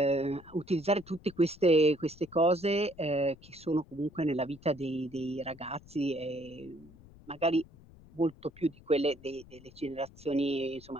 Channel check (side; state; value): left; noise; rumble, 22 dB below the sound